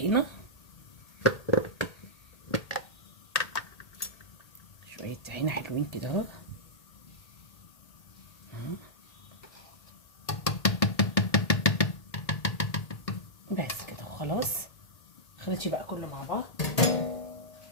شويه طحينه حلوين كده اهو. بس كده وخلاص. خلطش بقى كله مع بعض.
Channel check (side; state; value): right; late; 1.8 ms